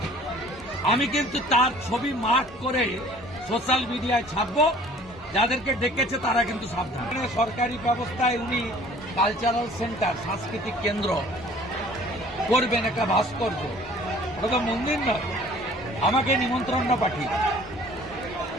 আমি কিন্তু তার ছবি মার্ক করে সোশ্যাল মিডিয়ায় ছাপবো। যাদেরকে ডেকেছে তারা কিন্তু সাবধান। সরকারি ব্যবস্থায় উনি কালচারাল সেন্টার, সাংস্কৃতিক কেন্দ্র করবেন, একটা ভাস্কর্য, ওটা তো মন্দির নয়। আমাকে নিমন্ত্রণ পাঠিয়ে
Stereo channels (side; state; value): both; normal; correlation 0.52